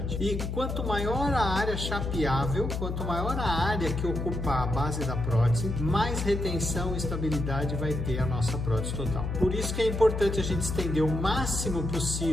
E quanto maior a área chapeável, quanto maior a área que ocupar a base da prótese, mais retenção e estabilidade vai ter a nossa prótese total. Por isso que é importante a gente estender o máximo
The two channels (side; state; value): left; noise; hum, 3 dB below the sound